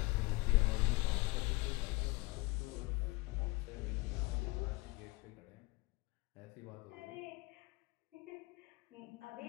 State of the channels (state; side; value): quieter; right; 23.2 dB